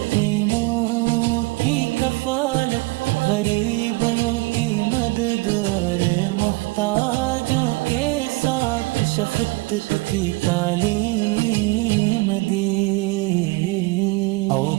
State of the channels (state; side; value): quieter; left; 24.2 dB